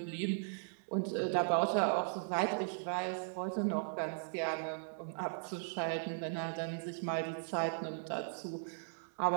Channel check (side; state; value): left; silent; digital silence